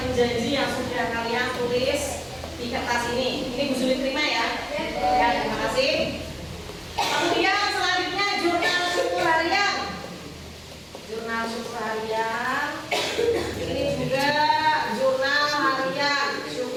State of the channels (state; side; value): identical; both; correlation 1.00